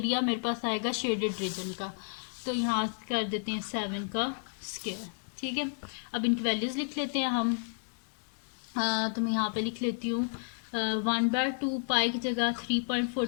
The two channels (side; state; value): right; silent; 57 dB below the other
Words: मेरे पास आएगा शेडेड रीजन का, तो यहाँ कर देते हैं 7 का स्क्वायर, ठीक है। अब इनकी वैल्यूज लिख लेते हैं हम, तो मैं यहाँ पे लिख लेती हूँ 1/2 पाई की जगह